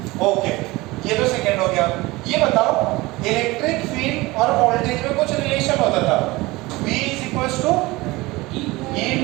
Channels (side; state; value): left; quieter; 21.2 dB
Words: ओके, ये तो सेकंड हो गया। ये बताओ, इलेक्ट्रिक फील्ड और वोल्टेज में कुछ रिलेशन होता था। V is equals to E